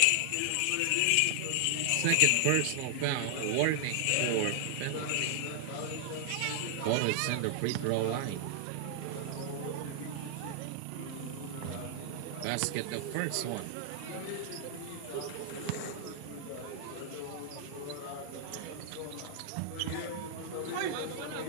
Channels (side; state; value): both; different; correlation 0.00